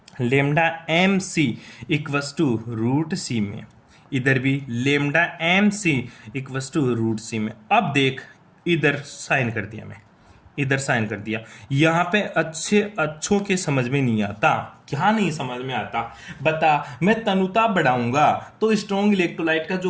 lambda M C equals to root C में, इधर भी lambda M C equals to root C में। अब देख इधर साइन कर दिया, मैं इधर साइन कर दिया। यहां पे अच्छों के समझ में नहीं आता, क्या नहीं समझ में आता बता। मैं तनुता बढ़ाऊंगा तो स्ट्रॉन्ग इलेक्ट्रोलाइट का जो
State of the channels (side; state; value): both; identical; correlation 1.00